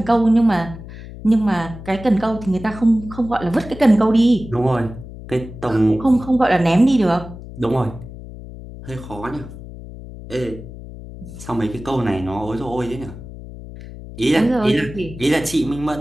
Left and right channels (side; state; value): left; noise; hum, 14 dB below the sound